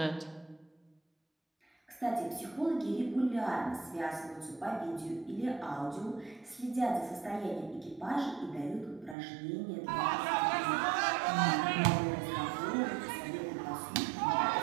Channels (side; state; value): left; drops out; at 9.2 s